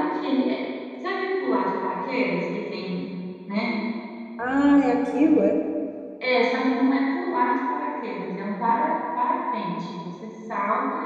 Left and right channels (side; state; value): both; identical; correlation 1.00